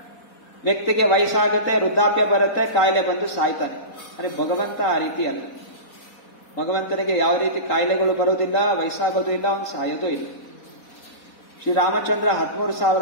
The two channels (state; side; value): late; right; 4.1 ms